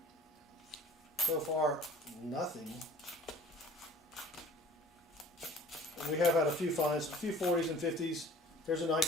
so far nothing. we have had a few finds, a few 40s and 50s. Here's a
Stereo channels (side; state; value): both; normal; correlation 0.48